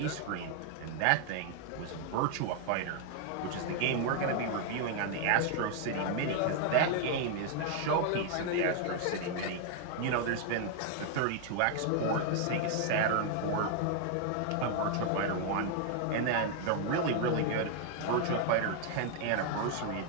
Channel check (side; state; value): both; different; correlation 0.00